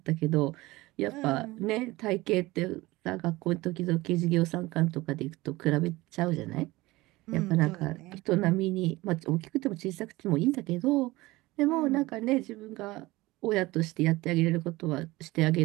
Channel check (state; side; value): quieter; left; 20.0 dB